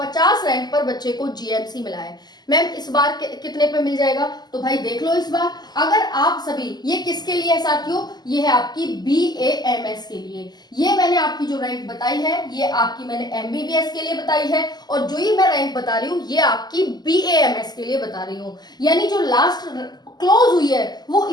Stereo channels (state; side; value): late; right; 0.20 ms